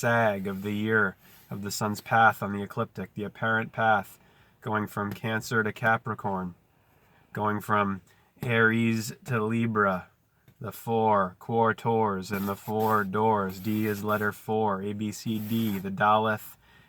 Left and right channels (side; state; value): both; identical; correlation 1.00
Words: of the year of the sun's path on the ecliptic, the apparent path going from Cancer to Capricorn, going from Aries to Libra, the 4 quartors and the 4 doors. D is letter 4, A, B, C, D, the Daleth